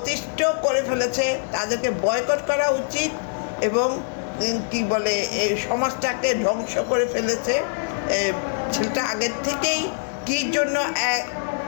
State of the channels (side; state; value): right; silent; digital silence